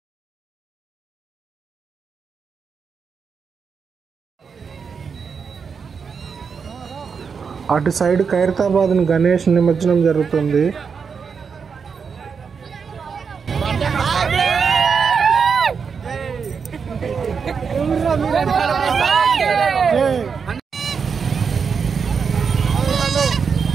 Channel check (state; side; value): quieter; left; 6.0 dB